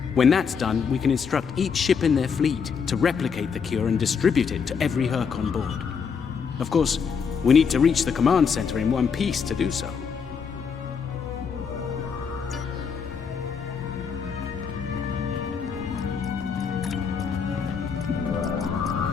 When that's done, we can instruct each ship in their fleet to replicate the cure and distribute it to every Hur'q on board. Of course, we need to reach the command center in one piece to do so.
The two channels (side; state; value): right; quieter; 6.2 dB